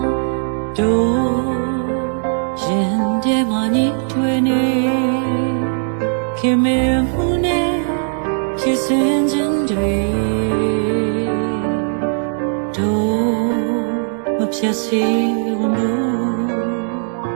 တို့ရင်ထဲမှာညှိထွေးနေခင်မင်မှုနဲ့ဖြစ်စဉ်ချင်းတွေမဖြတ်စီဝန်ဘူး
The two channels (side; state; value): left; silent; digital silence